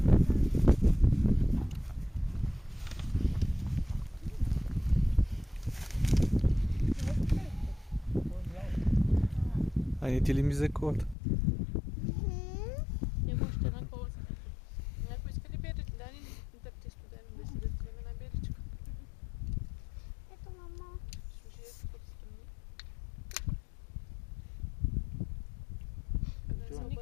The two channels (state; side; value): drops out; right; at 11.2 s